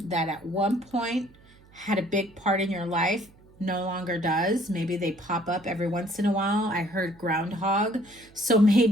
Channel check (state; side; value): noise; right; hum, 27 dB below the sound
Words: that at one point had a big part in your life, no longer does. Maybe they pop up every once in a while. I heard groundhog. So